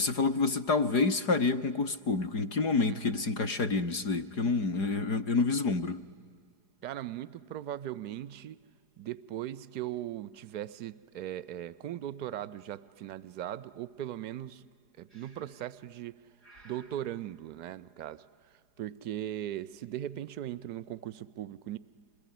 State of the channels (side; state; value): right; late; 4.8 ms